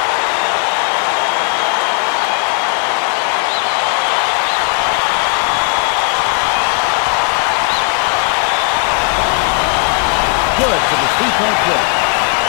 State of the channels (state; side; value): quieter; right; 36.4 dB